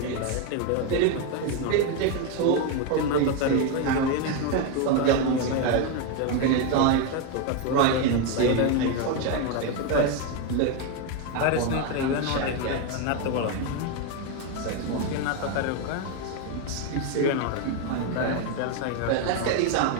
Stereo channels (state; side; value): different; both; correlation 0.02